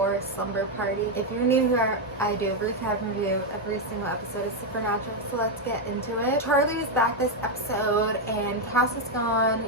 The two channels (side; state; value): both; normal; correlation 0.03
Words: Slumber Party. If you're new here, I do a recap review every single episode of Supernatural, so let's get into it. Charlie is back this episode and Cass is gone